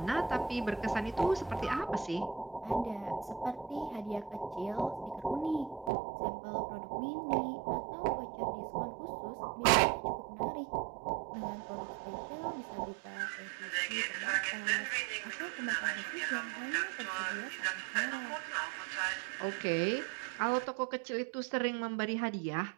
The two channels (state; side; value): drops out; left; at 5.9 s